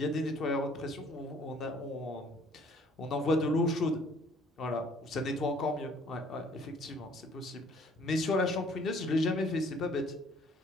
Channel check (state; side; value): normal; both; correlation 0.58